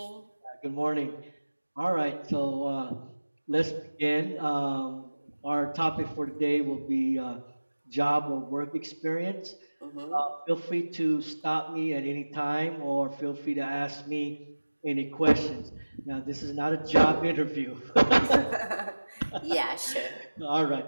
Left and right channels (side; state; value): both; inverted; correlation -1.00